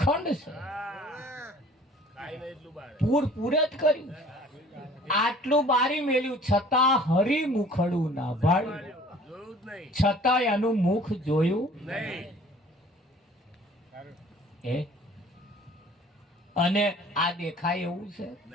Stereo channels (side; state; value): both; normal; correlation 0.51